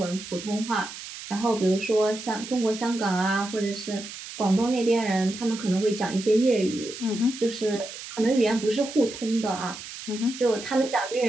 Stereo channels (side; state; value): right; noise; hiss, 12 dB below the sound